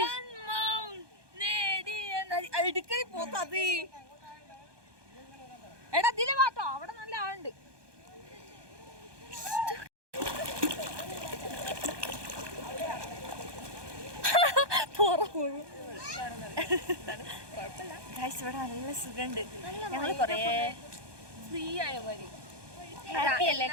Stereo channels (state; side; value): late; left; 1.2 ms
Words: അടുക്കളി പോത്തത്. എടാ ഇതില് വാട്ടോ, അവിടെ നല്ല ആളുണ്ട്. ഇവിടെ നല്ല സുഖമുണ്ട്. ഞങ്ങള് കൊറേ ഫ്രീ ആയ പോലെ ഹാപ്പി അല്ലേ